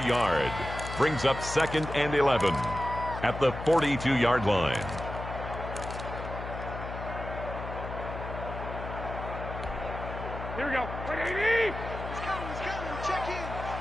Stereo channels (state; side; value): noise; left; hum, 8 dB below the sound